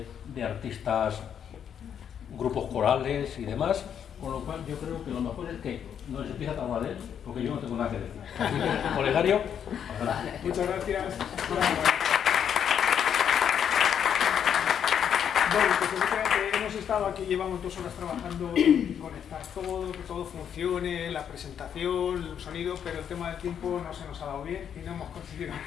artistas, grupos corales y demás, con lo cual yo creo que lo mejor es que no les empiece a hablar de él, porque yo no tengo nada que decir. Así que, Olegario, adelante. Muchas gracias. Bueno, pues efectivamente hemos estado aquí, llevamos 2 horas trabajando en conectar todo, que todo funcione, la presentación, el sonido, pero el tema del tiempo no se nos ha dado bien y no hemos conseguido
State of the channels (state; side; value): quieter; right; 8.5 dB